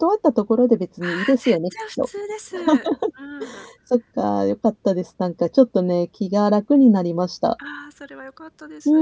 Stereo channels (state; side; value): identical; both; correlation 1.00